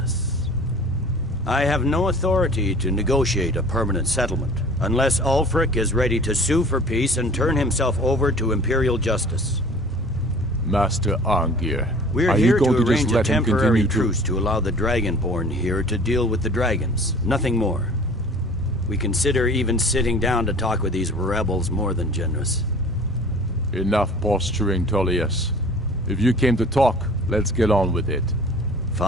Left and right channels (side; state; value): both; normal; correlation 0.46